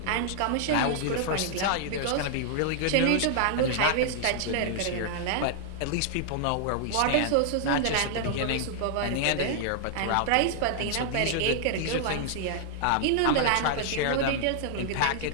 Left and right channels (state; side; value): different; both; correlation 0.00